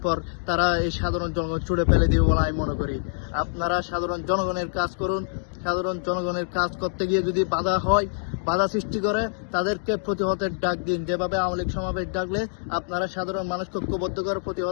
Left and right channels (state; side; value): silent; right; digital silence